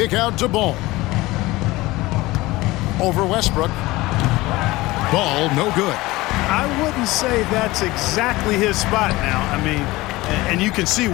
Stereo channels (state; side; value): quieter; right; 19.8 dB